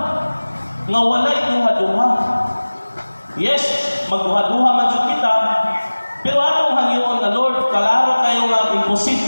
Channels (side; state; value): both; inverted; correlation -1.00